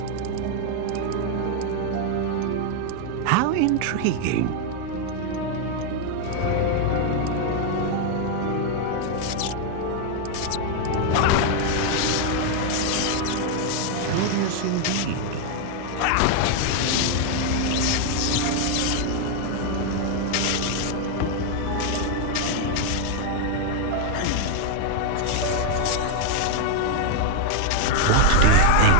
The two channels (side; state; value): both; different; correlation 0.00